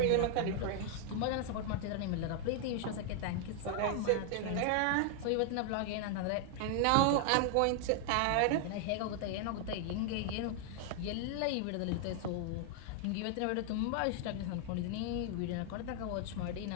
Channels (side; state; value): both; different; correlation 0.00